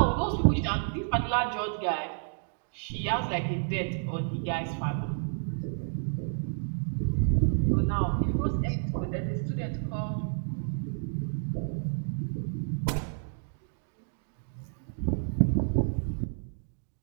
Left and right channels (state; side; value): silent; left; digital silence